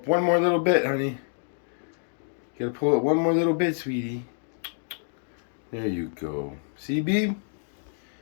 one more little bit, honey. Gotta pull it one more little bit, sweetie. There you go. See, Beeb?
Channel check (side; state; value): right; silent; digital silence